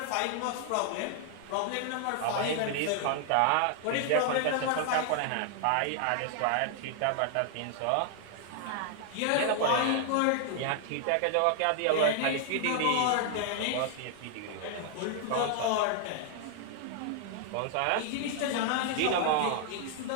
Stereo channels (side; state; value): both; different; correlation 0.00